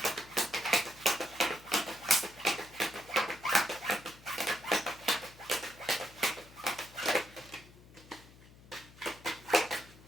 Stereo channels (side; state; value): left; noise; hum, 22 dB below the sound